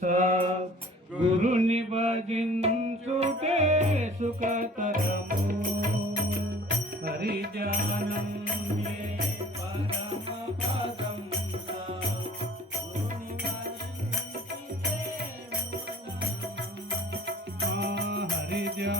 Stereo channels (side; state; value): both; normal; correlation 0.48